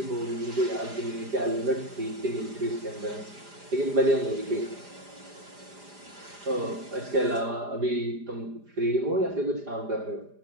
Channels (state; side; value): late; left; 4.9 ms